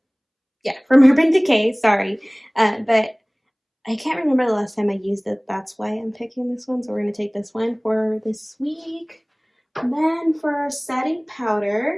Yeah, from Urban Decay, sorry. But I can't remember the last time I used it. That's why I'm picking this one. So we're going to take this one for this week. And then for setting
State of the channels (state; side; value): identical; both; correlation 1.00